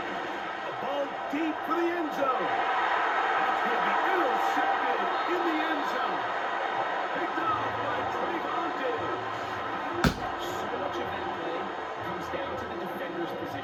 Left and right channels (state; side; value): identical; both; correlation 1.00